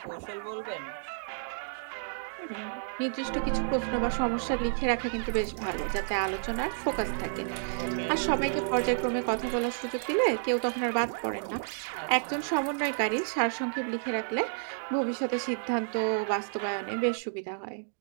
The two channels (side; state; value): left; silent; digital silence